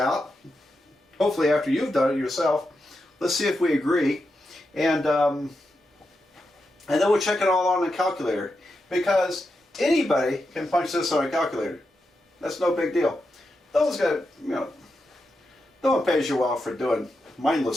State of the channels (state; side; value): normal; both; correlation 0.87